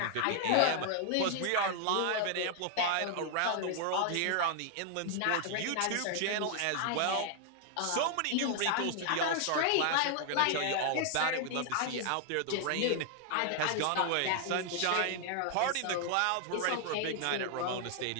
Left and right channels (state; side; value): different; both; correlation 0.00